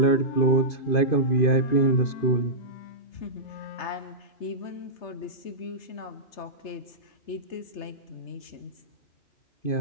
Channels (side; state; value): right; late; 3.3 ms